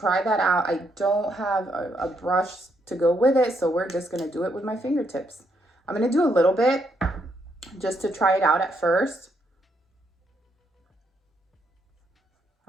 that out. I don't have a brush to go with it, so we're just gonna do it with my fingertips. I'm gonna do a little bit just to try it out at first.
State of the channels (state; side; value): normal; both; correlation 0.75